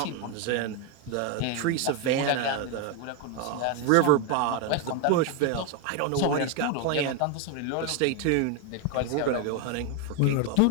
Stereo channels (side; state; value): both; different; correlation 0.02